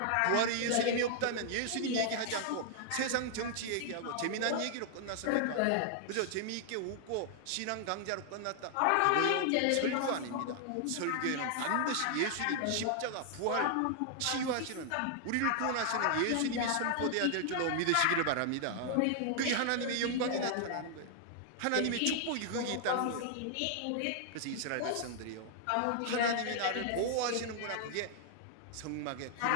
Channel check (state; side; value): different; both; correlation -0.01